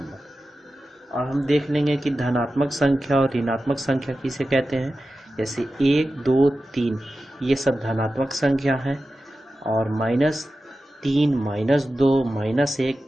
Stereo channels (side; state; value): both; normal; correlation 0.93